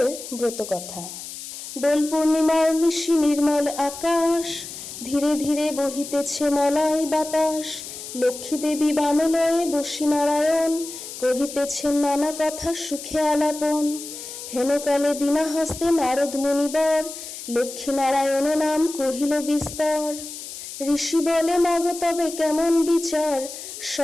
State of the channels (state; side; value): noise; left; hiss, 11 dB below the sound